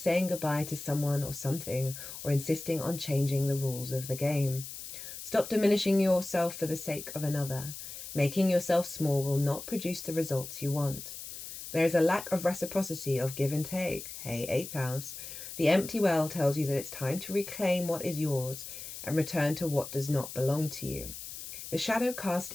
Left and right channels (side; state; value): left; noise; hiss, 10 dB below the sound